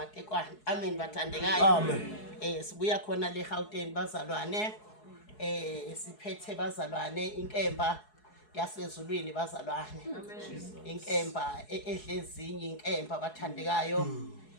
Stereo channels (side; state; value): right; late; 4.7 ms